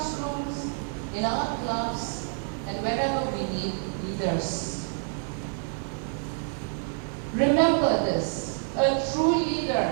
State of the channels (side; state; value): left; silent; 59 dB below the other